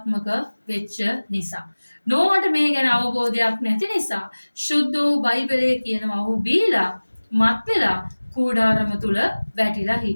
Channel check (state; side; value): inverted; both; correlation -1.00